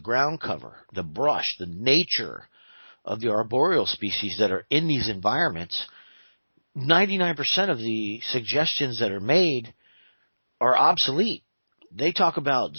cover, the brush, the nature of the arboreal species that are in these environments, 99% of the suggestions that are made are obsolete. They talk about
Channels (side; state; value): both; inverted; correlation -1.00